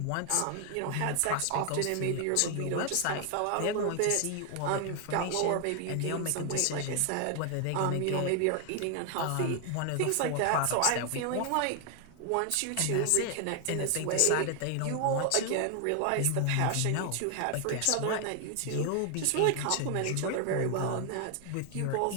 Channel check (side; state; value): both; different; correlation 0.00